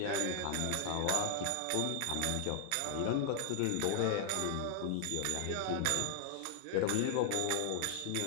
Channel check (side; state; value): both; different; correlation 0.00